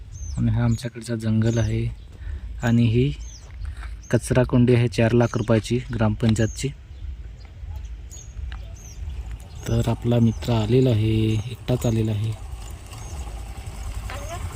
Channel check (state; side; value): identical; both; correlation 1.00